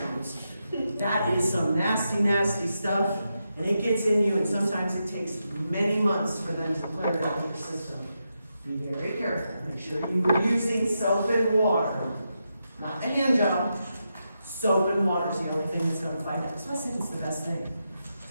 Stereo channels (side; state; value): both; inverted; correlation -0.86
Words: That is some nasty, nasty stuff, and it gets in you, and sometimes it takes many months for them to clear it out of your system. Be very careful. Make sure you are using soap and water, not the hand job. Soap and water is the only thing that's going to fight that. So I think it's the best thing.